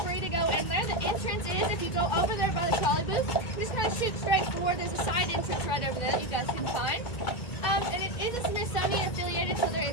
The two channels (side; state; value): right; late; 2.1 ms